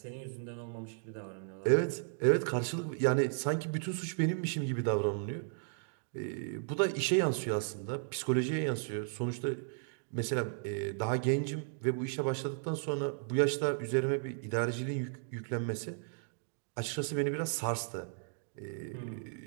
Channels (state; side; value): silent; left; digital silence